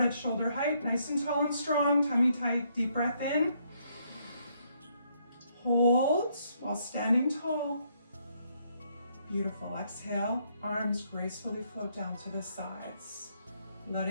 shoulder height, nice and tall and strong, tummy tight, deep breath in. Hold while standing tall. Beautiful. Exhale, arms gracefully float down to the sides.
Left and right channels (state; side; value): inverted; both; correlation -0.72